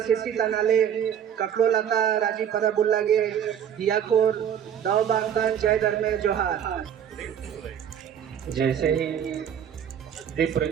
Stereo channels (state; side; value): quieter; left; 8.9 dB